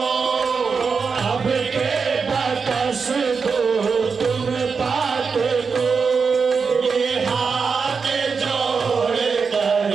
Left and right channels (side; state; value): left; quieter; 5.3 dB